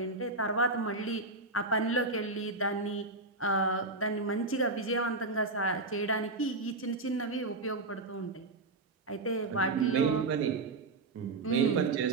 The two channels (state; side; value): quieter; left; 3.3 dB